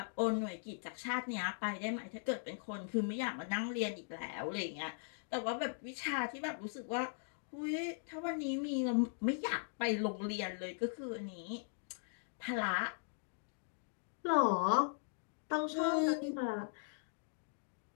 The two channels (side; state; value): right; silent; digital silence